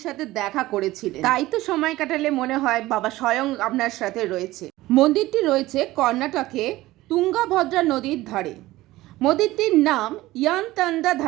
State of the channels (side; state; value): left; quieter; 17.5 dB